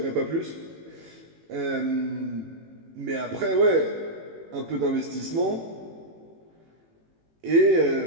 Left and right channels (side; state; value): left; late; 18 ms